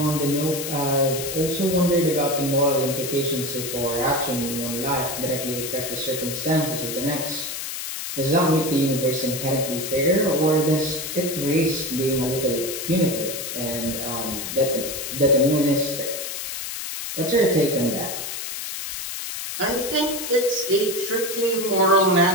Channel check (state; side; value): noise; left; hiss, 6 dB below the sound